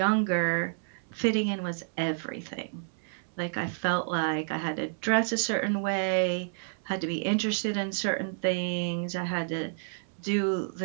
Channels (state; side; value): silent; left; 58 dB below the other